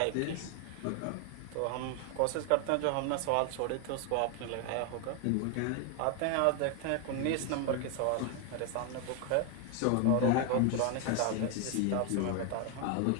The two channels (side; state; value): both; different; correlation 0.01